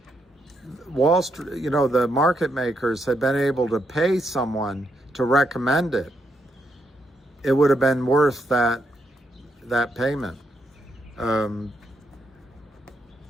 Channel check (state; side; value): normal; both; correlation 0.79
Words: Wall Street, the market makers had been able to pay someone to recommend it, it would have been worth that payment. But